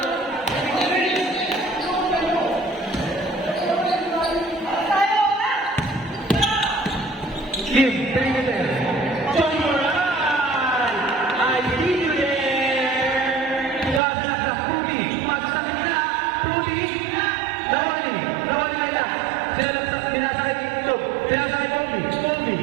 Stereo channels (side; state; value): left; drops out; at 14.0 s